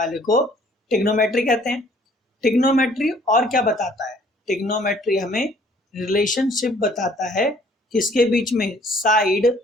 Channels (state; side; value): normal; both; correlation 0.58